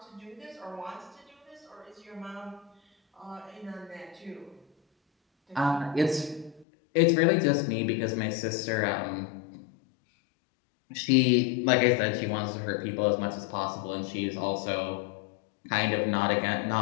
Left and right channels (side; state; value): right; drops out; at 6.7 s